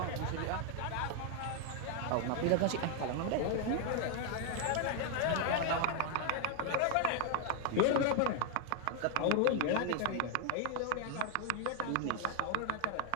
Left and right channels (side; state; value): both; different; correlation 0.00